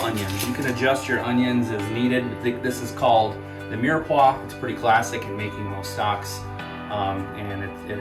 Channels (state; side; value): identical; both; correlation 1.00